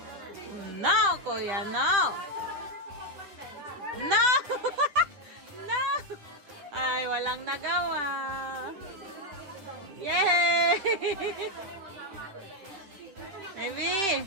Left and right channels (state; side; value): late; left; 10 ms